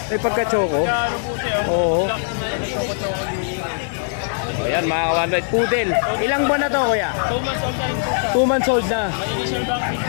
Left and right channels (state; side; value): silent; right; digital silence